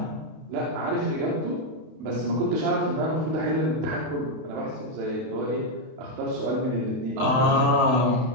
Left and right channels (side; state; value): left; late; 32 ms